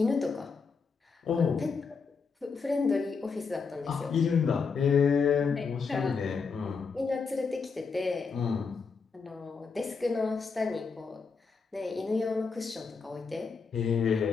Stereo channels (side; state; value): right; quieter; 5.1 dB